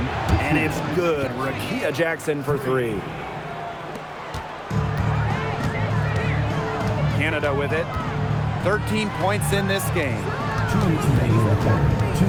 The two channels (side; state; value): both; identical; correlation 1.00